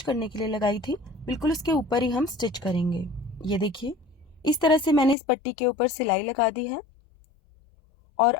करने के लिए लगाई थी बिल्कुल उसके ऊपर ही हम स्टिच करेंगे। ये देखिए, इस तरह से मैंने इस पट्टी के ऊपर सिलाई लगा दी है और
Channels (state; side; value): drops out; right; at 5.2 s